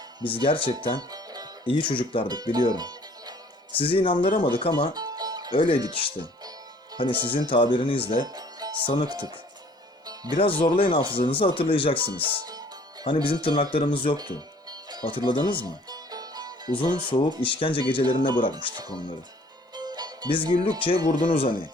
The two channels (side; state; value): both; normal; correlation 0.55